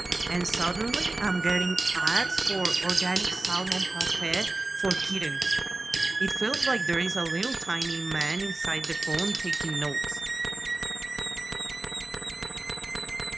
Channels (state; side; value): quieter; left; 3.0 dB